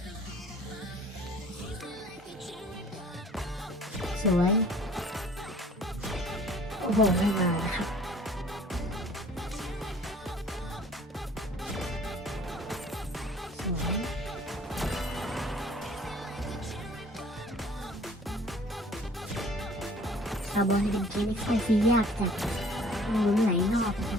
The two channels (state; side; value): normal; both; correlation 0.52